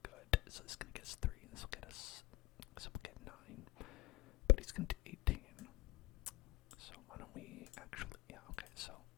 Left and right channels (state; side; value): quieter; right; 19.4 dB